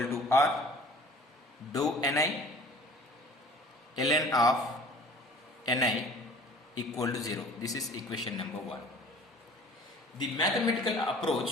to r, dou ni ln of ni equal to 0. This is equation number 1. The mathematical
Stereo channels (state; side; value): normal; both; correlation 0.47